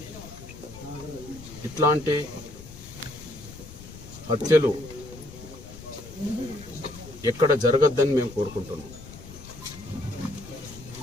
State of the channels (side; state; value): left; noise; rumble, 15 dB below the sound